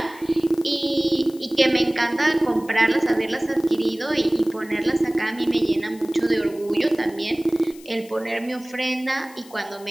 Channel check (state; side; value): noise; left; hiss, 22 dB below the sound